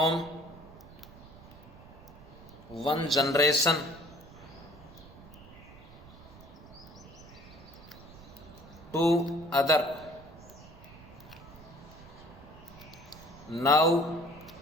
one generation to other. Now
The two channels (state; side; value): noise; right; rumble, 19 dB below the sound